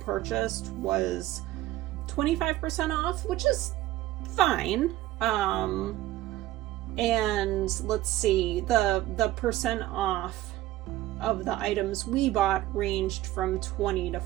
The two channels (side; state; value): left; quieter; 15.5 dB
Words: was 25% off, which is fine. And let's see, the percent off of the items we bought ranged from 20 to